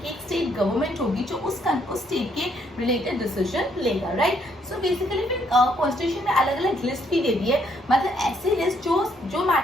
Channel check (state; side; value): normal; both; correlation 0.70